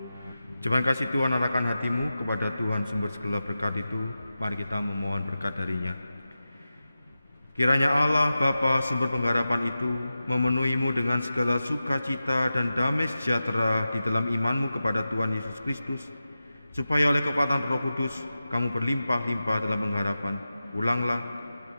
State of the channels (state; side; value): inverted; both; correlation -0.93